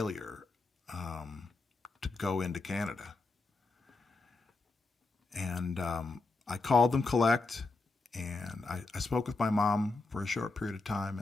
to go into Canada. And I called them collect, and I spoke with my mom for a short period of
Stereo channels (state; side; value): quieter; right; 3.5 dB